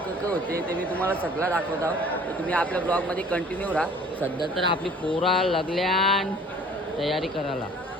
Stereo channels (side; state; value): both; normal; correlation 0.51